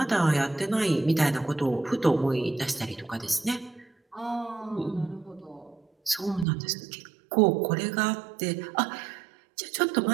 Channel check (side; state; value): left; drops out; at 6.5 s